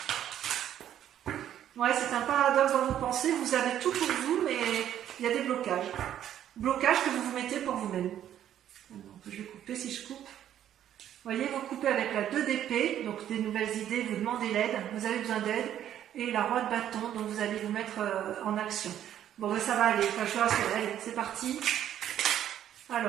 Ouais, c'est un paradoxe dans vos pensées, vous avez tout pour vous, mais il y a des blocages. Blocages que vous vous mettez pour vous-même. Donc, je vais couper si je coupe. Vous voyez, vous coupez avec la 2 d'épée, donc des nouvelles idées, vous demandez l'aide, vous avez besoin d'aide, et la roi de bâton, donc vous allez vous mettre en action. Bon, ben, ça va aller, enfin, je suis rassurée, allez, c'est parti.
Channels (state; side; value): quieter; left; 10.9 dB